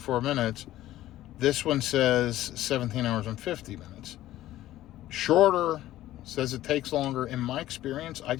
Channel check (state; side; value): quieter; right; 14.5 dB